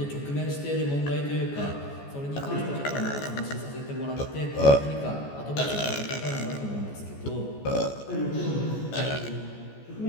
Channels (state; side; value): late; right; 14 ms